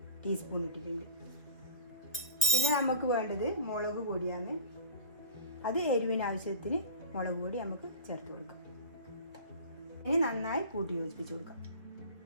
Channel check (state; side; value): inverted; both; correlation -0.39